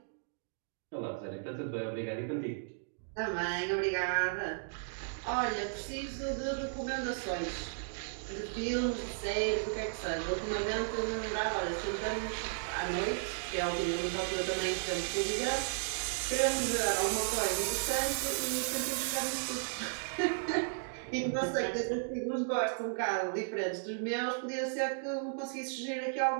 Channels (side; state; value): left; silent; digital silence